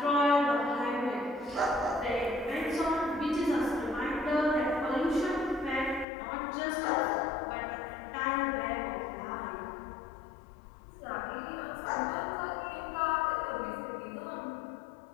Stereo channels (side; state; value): right; drops out; at 6.1 s